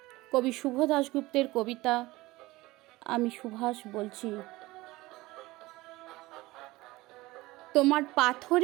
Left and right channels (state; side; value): quieter; left; 19.7 dB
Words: কবি শুভ দাশগুপ্তের কবিতা আমি সুভাষ বলছি। তোমার